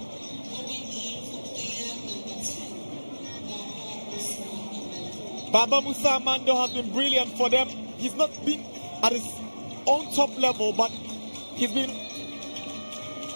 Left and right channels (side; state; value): both; inverted; correlation -1.00